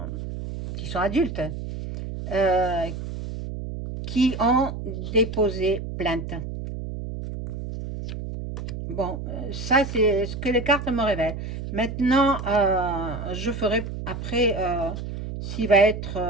sont adultes, euh, qui ont déposé plainte. Bon, ça c'est ce que les cartes me révèlent. Maintenant, je ferai après s'il va être...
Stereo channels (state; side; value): noise; right; hum, 7 dB below the sound